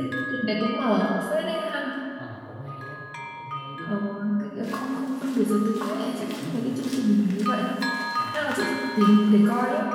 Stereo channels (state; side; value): identical; both; correlation 1.00